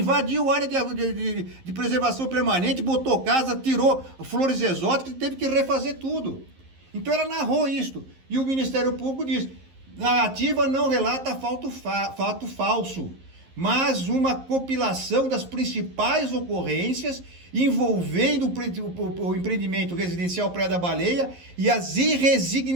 a área de preservação permanente, botou casa, tirou flores exóticas e teve que refazer tudo. Então ela narrou isso. E o Ministério Público diz, narrativa não relata fato falso, mas uma compilação das principais ocorrências envolvendo o empreendimento residencial Praia da Baleia e as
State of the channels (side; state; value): left; late; 11 ms